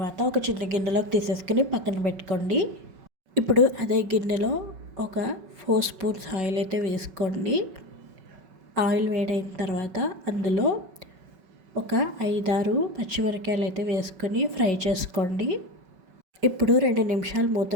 ఒక చిన్న గిన్నెలోకి తీసేసుకుని పక్కన పెట్టుకోండి. ఇప్పుడు అదే గిన్నెలో ఒక 4 స్పూన్స్ ఆయిల్ అయితే వేసుకోండి. ఆయిల్ వేడైన తర్వాత అందులో ఒక 5-6 పచ్చిమిరపకాయలు అయితే వేసుకొని ఫ్రై చేసుకోండి. ఇప్పుడు 2 నిమిషాలు మూత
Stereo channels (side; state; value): left; late; 5.3 ms